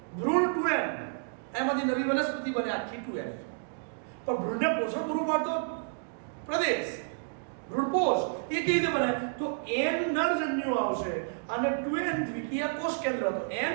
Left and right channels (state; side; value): silent; left; digital silence